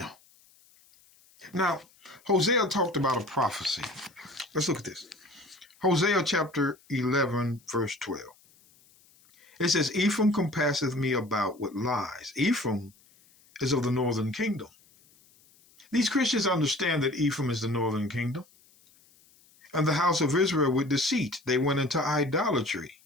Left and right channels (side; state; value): left; noise; hiss, 30 dB below the sound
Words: Now, Hosea talked about a prophecy. Let's look at this. Hosea chapter 11, verse 12. It says, Ephraim compasseth me about with lies. Ephraim is of the northern kingdom. These Christians understand that Ephraim is the northern kingdom. And the house of Israel with deceit. They went into idolatry,